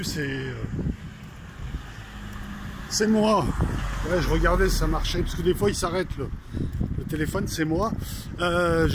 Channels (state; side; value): identical; both; correlation 1.00